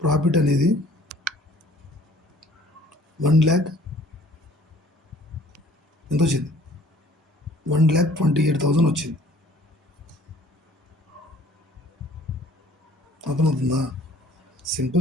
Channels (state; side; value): normal; both; correlation 0.54